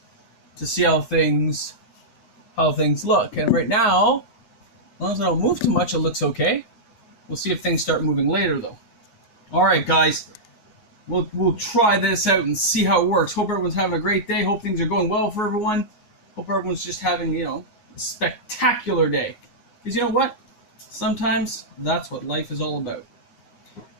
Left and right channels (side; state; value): right; late; 9.5 ms